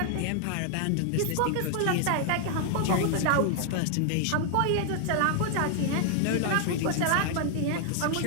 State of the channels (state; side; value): different; both; correlation 0.00